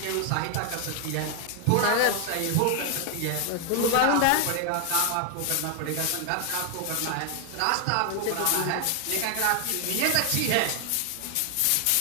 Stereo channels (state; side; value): different; both; correlation 0.00